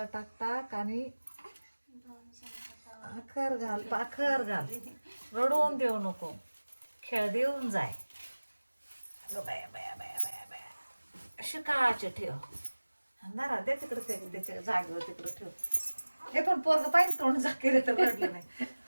टाकटाक आणि पाखर घाल रडवून देऊ नको खेळ देऊन जाय अगं बाया बाया बाया बाया बाया शिकाचे ठेव अंधारा दे तिकडे त्याच्या जागेवर तिकडे ठेव हे पण पोरग पाहिजे तोंड झाकेले तर रडलं नाही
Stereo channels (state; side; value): inverted; both; correlation -1.00